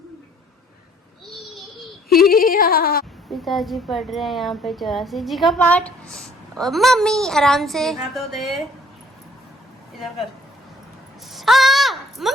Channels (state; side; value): normal; both; correlation 0.59